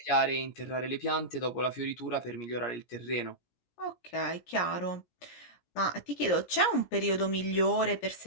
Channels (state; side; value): late; right; 17 ms